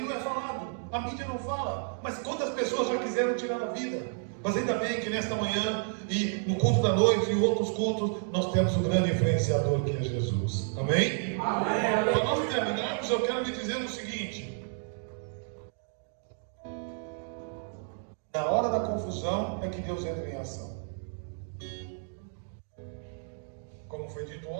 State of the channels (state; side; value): silent; left; 57 dB below the other